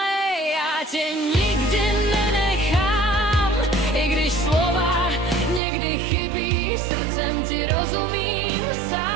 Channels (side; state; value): left; drops out; at 5.6 s